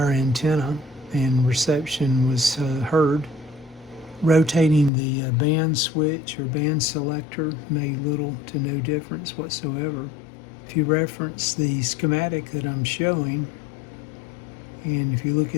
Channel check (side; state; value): right; drops out; at 4.9 s